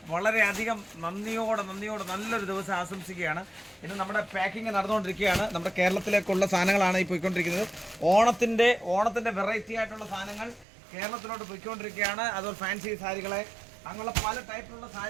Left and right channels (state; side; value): drops out; left; at 10.7 s